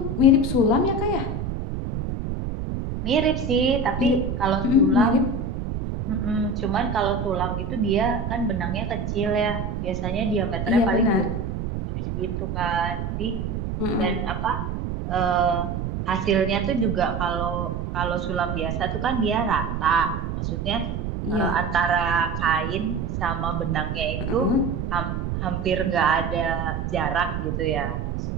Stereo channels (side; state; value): right; noise; rumble, 3 dB below the sound